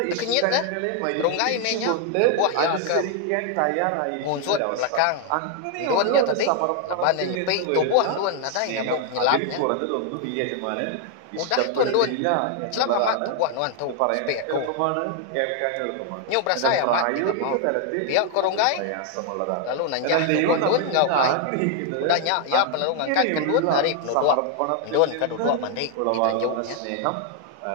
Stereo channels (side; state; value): both; different; correlation 0.00